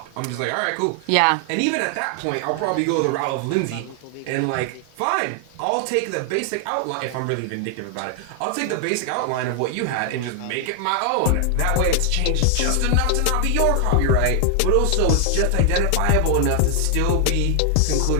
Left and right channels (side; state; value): both; different; correlation 0.00